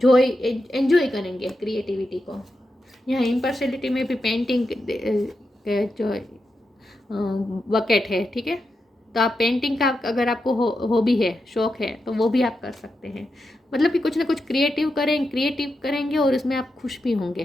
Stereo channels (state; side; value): normal; both; correlation 0.87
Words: एंजॉय करेंगे क्रिएटिविटी को। यहाँ इम्पर्सनलिटी में भी पेंटिंग जो बकेट है, ठीक है। तो आप पेंटिंग का अगर आपको हॉबी है, शौक है, तो वो भी आप कर सकते हैं। मतलब कि कुछ ना कुछ क्रिएटिव करेंगे और उसमें आप खुश भी होंगे